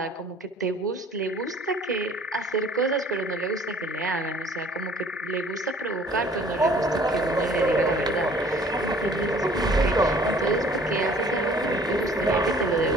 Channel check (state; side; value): normal; both; correlation 0.53